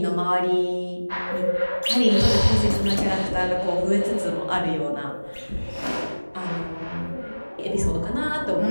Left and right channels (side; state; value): both; inverted; correlation -1.00